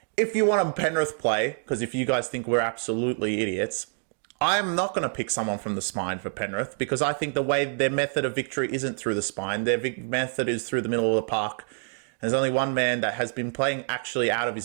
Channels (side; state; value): left; silent; 60 dB below the other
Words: If you want a Penrith play, because if you guys think we're absolutely idiots, I'm not going to pick someone from the spine for Penrith, because I think the way their method of victory isn't through the spine. Their method is through the middle of the park. There's only one man that has been playing actually out of